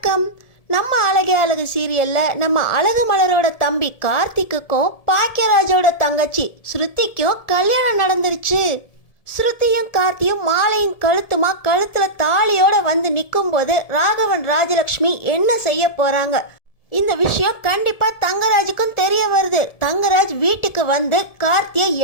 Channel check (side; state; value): right; late; 1.7 ms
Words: நம்ம அழகே அழகு சீரியல்ல நம்ம அழகு மலரோட தம்பி கார்த்திக்குக்கும் பாக்கியராஜோட தங்கச்சி ஸ்ருதிக்கும் கல்யாணம் நடந்துருச்சு. ஸ்ருதியும் கார்த்தியும் மாலையும் கழுத்துமா கழுத்துல தாலியோட வந்து நிற்கும் போது ராகவன் ராஜலக்ஷ்மி என்ன செய்ய போறாங்க? இந்த விஷயம் கண்டிப்பா தங்கராஜுக்கும் தெரிய வருது. தங்கராஜ் வீட்டுக்கு வந்து கார்த்தியை